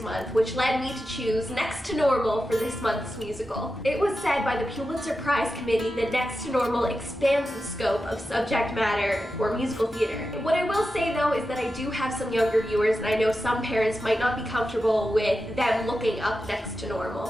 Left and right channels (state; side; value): normal; both; correlation 0.91